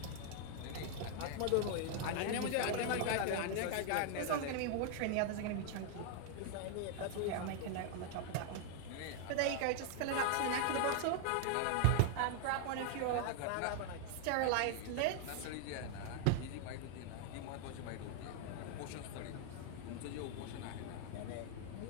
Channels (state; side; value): different; both; correlation 0.00